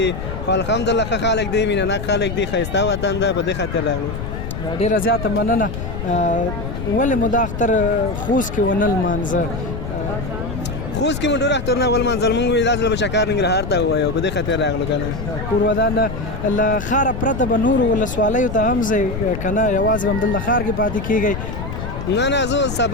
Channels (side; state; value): left; noise; rumble, 6 dB below the sound